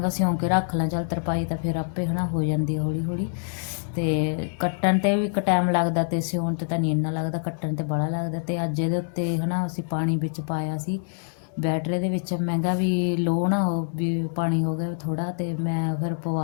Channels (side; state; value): right; silent; digital silence